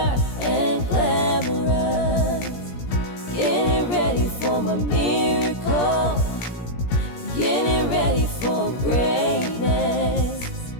and glamorous. Getting ready for my miracle, getting ready for greatness,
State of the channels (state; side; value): late; right; 17 ms